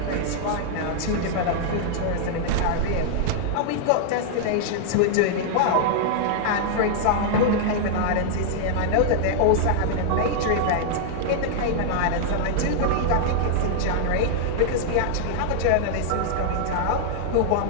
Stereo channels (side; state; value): both; different; correlation -0.01